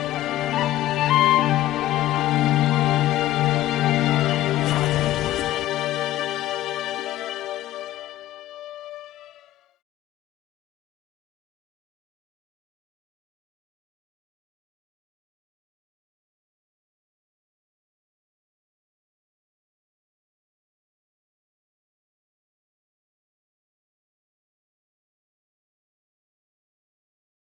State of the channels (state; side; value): quieter; right; 14.6 dB